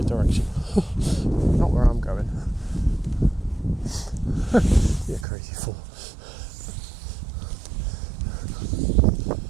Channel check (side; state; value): left; drops out; at 5.2 s